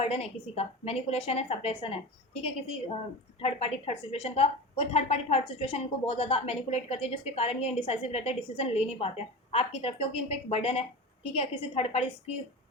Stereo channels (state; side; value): normal; both; correlation 0.28